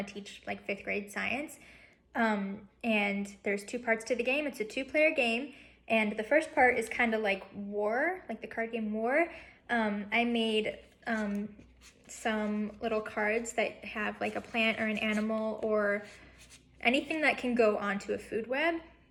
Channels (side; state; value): both; identical; correlation 1.00